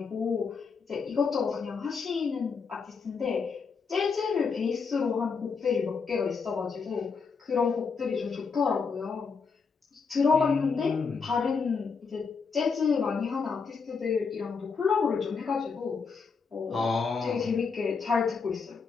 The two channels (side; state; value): right; quieter; 5.3 dB